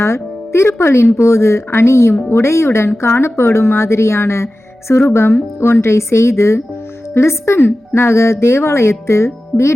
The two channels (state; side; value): normal; both; correlation 0.95